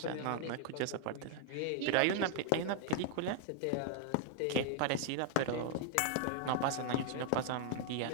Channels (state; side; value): different; both; correlation 0.00